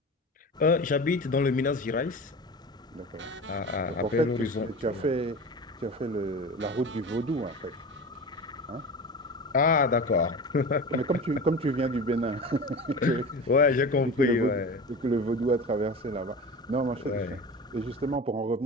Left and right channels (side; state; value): both; normal; correlation 0.32